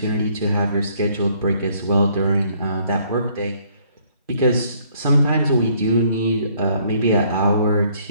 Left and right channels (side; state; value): both; inverted; correlation -0.64